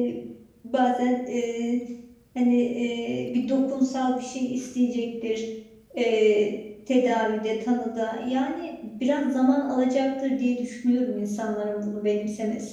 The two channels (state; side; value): identical; both; correlation 1.00